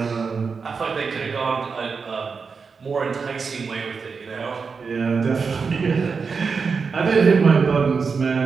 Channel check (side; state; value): left; quieter; 5.2 dB